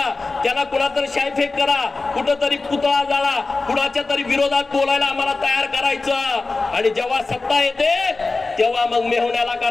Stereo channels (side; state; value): right; quieter; 3.6 dB